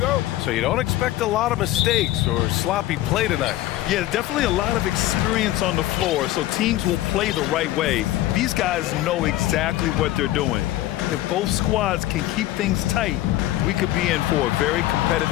you don't expect a lot of mistakes or sloppy play tonight. Yeah, definitely a lot of experience on the floor, so teams will play the right way. These guys know exactly what they're doing. If both squads can keep things tight, we could be in for a very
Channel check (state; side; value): quieter; right; 15.4 dB